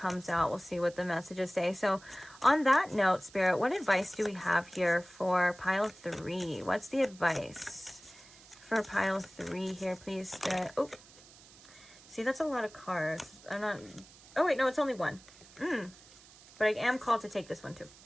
out. We'll see what the messages say. So on that note, Spirit, what advice do we have here for pile 3? What's the advice for pile 3 here, please, Spirit? Oh, see, that's a lot of cards. Oh wait, no, it's only one. But I am called to take this one too.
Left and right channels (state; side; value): noise; right; hiss, 22 dB below the sound